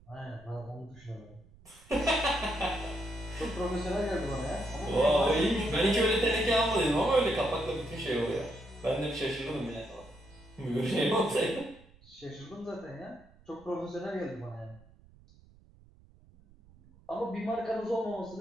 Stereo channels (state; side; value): noise; right; rumble, 26 dB below the sound